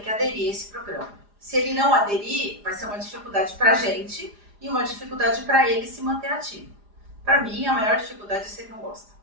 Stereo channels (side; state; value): left; late; 4.9 ms